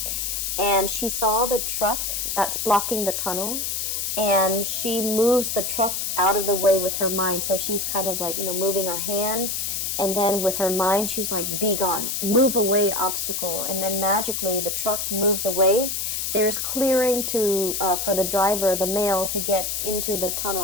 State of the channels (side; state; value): left; noise; hiss, 2 dB below the sound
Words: And she saw the truck that's blocking the tunnel, and she moves the truck out of the way with her mind. So she's kind of like, moving her hand, and then with her mind she's like, be gone, move away, obstacle. And then magically the truck moves away. There's clearing to for the driver, the male, to get into the